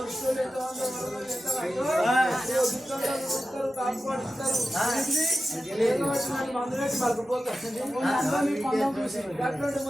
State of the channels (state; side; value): normal; both; correlation 0.93